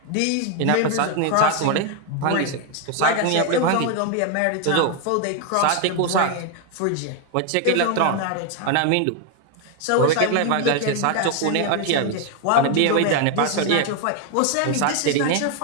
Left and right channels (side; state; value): both; different; correlation 0.01